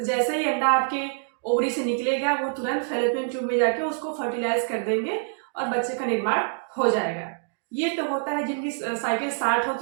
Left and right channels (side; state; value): left; silent; digital silence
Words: जैसे ही अंडा आपके ओवरी से निकलेगा, वो तुरंत फैलोपियन ट्यूब में जाके उसको फर्टिलाइज कर देंगे और बच्चे का निर्माण हो जाएगा। ये तो होता है जिनकी साइकिल 60